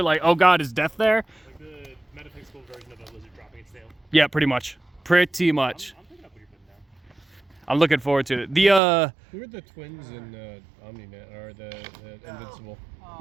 like, oh God, is death there? Like the metaphysical version of a lizard dropping its tail. Yeah, pretty much. Pretty much. I'm picking up what you're putting down. I'm looking forward to it. Who are the twins in Omni-Man, or the Invincible?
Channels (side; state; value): left; drops out; at 8.8 s